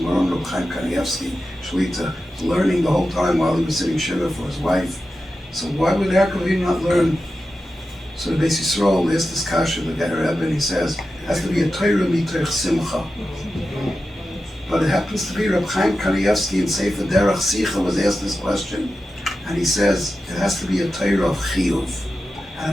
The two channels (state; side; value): normal; both; correlation 0.91